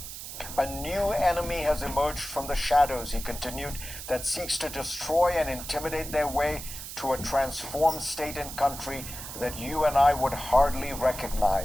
A new enemy has emerged from the shadows, he continued, that seeks to destroy and intimidate their way to a transformed state and country that you and I would hardly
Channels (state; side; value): noise; right; hiss, 10 dB below the sound